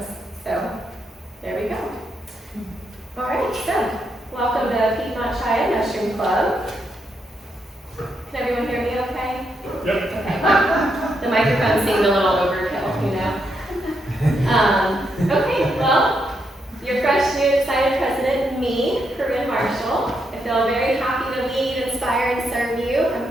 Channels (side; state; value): both; normal; correlation 0.80